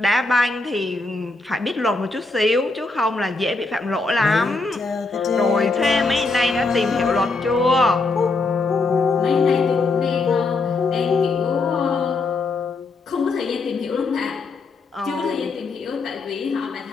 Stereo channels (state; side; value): quieter; right; 3.7 dB